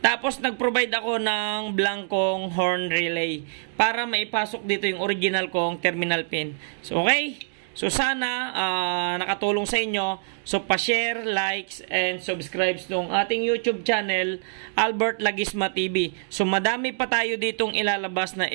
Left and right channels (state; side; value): silent; left; digital silence